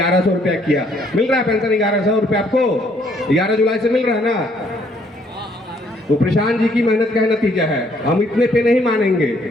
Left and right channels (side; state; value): both; normal; correlation 0.66